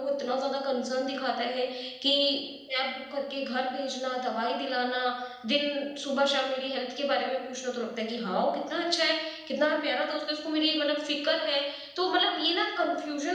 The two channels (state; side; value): identical; both; correlation 1.00